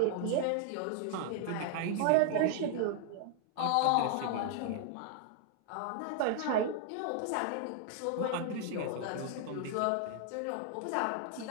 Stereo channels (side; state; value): both; different; correlation 0.00